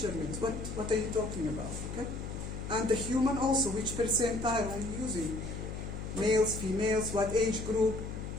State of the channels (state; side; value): noise; left; hum, 7 dB below the sound